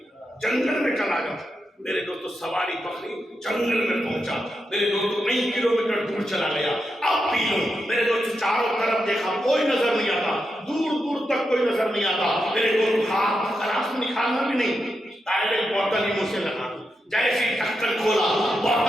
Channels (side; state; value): both; normal; correlation 0.86